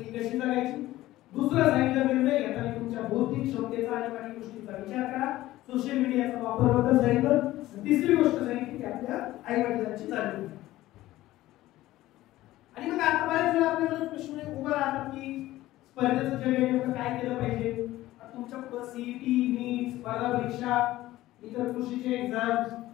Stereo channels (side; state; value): right; quieter; 16.1 dB